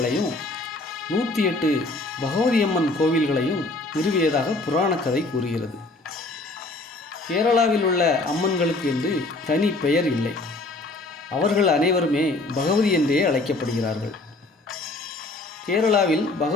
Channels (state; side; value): quieter; right; 3.0 dB